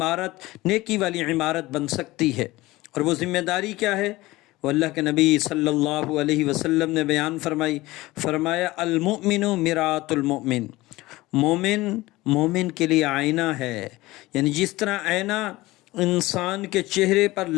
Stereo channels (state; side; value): quieter; right; 19.2 dB